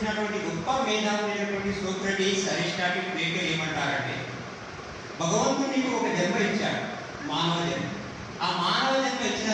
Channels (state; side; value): identical; both; correlation 1.00